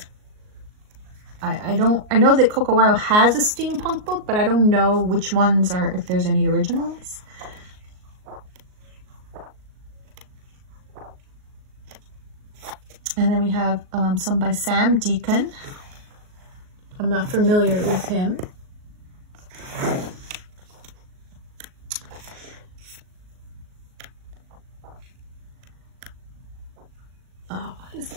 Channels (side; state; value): left; late; 38 ms